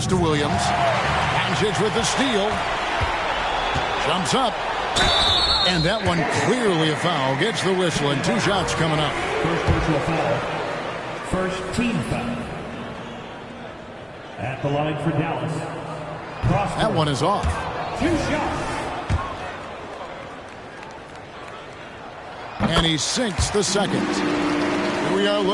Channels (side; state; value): both; identical; correlation 1.00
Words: to Williams. Doncic with the steal. Jumps up. And that one clearly a foul. Gets the whistle and 2 shots coming up. First personal foul. First team foul. At the line for Dallas. Prosper. That one is off. 2 shots. And he sinks the second. Here we are